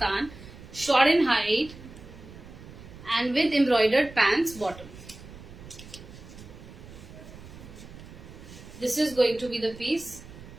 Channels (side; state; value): right; noise; rumble, 17 dB below the sound